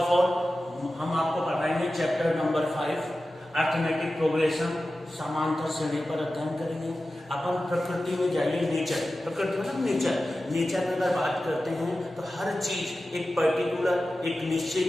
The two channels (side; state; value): both; normal; correlation 0.94